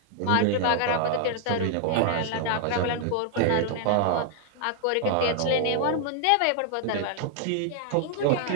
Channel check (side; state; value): both; different; correlation 0.00